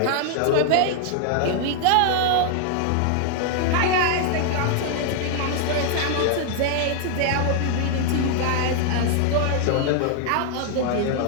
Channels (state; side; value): different; both; correlation 0.00